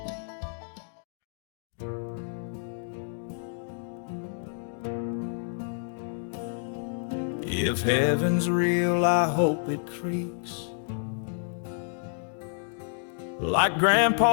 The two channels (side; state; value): right; silent; digital silence